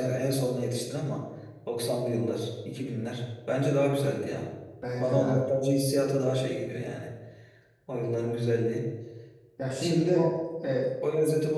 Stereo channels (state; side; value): identical; both; correlation 1.00